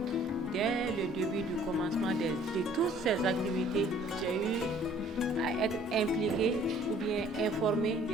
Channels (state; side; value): normal; both; correlation 0.56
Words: dès le début du commencement de toutes ces activités, j'ai eu à être impliquée ou bien informée